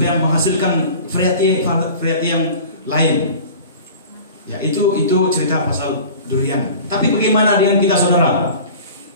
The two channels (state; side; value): inverted; both; correlation -0.41